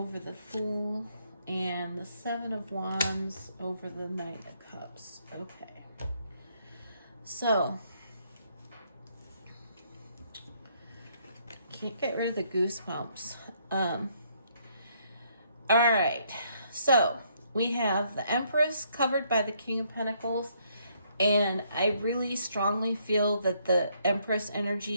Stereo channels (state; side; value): inverted; both; correlation -0.70